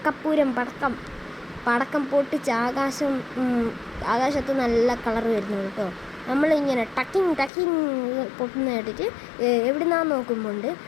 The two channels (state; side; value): drops out; right; at 7.5 s